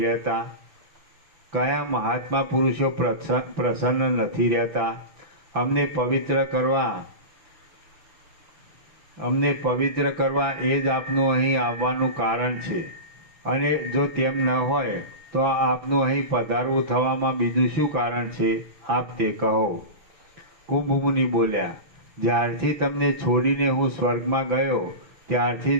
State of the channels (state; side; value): late; left; 5.9 ms